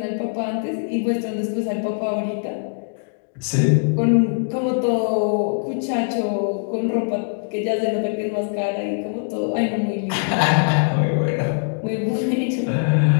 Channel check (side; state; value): right; silent; digital silence